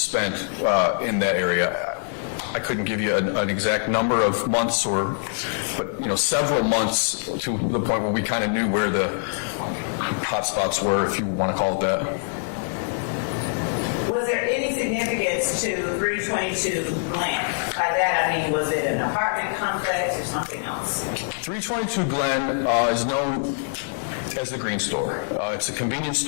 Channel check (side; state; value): right; silent; digital silence